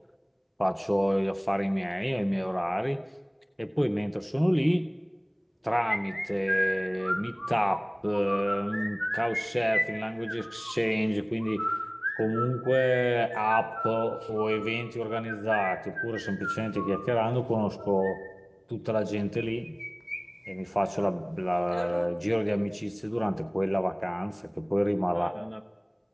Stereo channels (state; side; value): identical; both; correlation 1.00